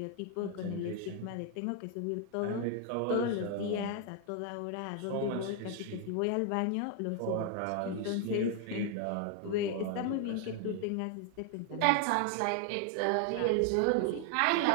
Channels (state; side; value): different; both; correlation 0.00